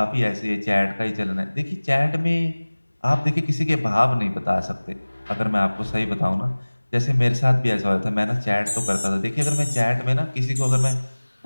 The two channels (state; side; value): inverted; both; correlation -1.00